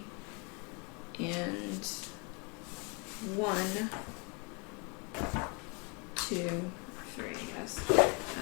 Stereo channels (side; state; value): right; quieter; 32.5 dB